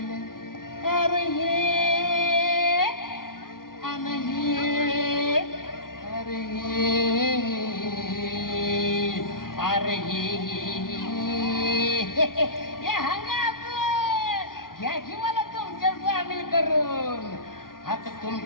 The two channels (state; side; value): late; right; 0.91 ms